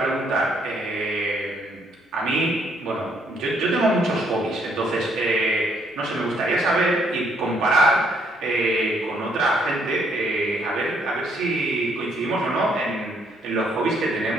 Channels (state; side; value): normal; both; correlation 0.69